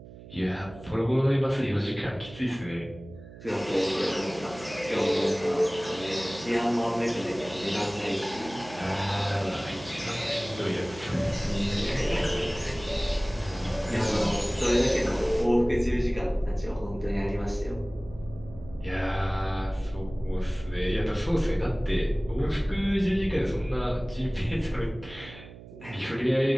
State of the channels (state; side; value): noise; right; hum, 17 dB below the sound